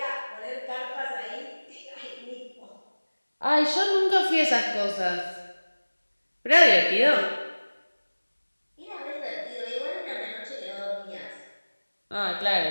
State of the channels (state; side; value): inverted; both; correlation -1.00